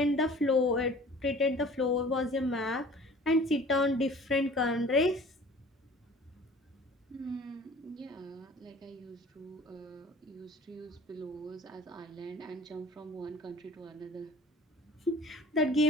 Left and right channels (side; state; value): both; normal; correlation 0.47